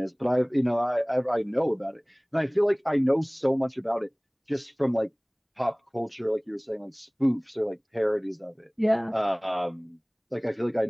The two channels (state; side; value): identical; both; correlation 1.00